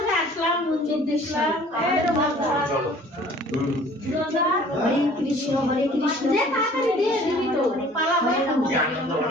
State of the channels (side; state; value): both; normal; correlation 0.51